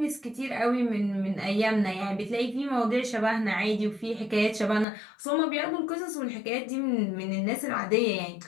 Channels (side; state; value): right; drops out; at 4.9 s